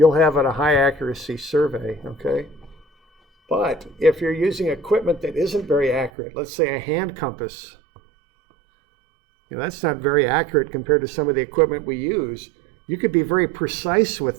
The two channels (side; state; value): left; drops out; at 6.1 s